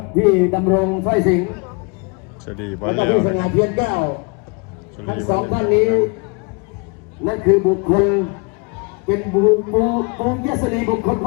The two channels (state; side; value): quieter; right; 31.6 dB